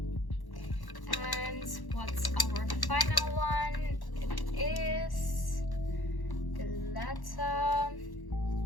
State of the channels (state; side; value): late; right; 1.1 ms